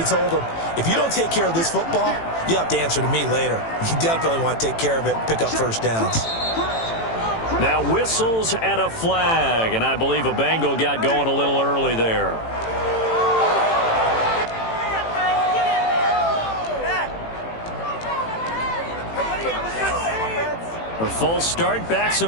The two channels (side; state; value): right; late; 18 ms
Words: him, if you don't take care of this football, you have to answer to me later. You definitely want to take care of it, pick up first downs. Now whistles and a flag, and I believe a Bengal got going a little early there. A false start backs